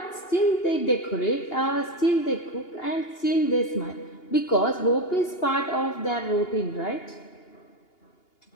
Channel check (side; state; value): right; late; 2.8 ms